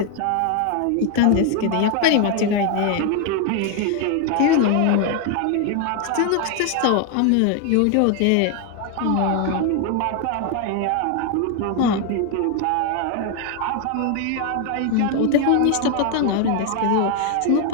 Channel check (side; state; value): both; different; correlation 0.01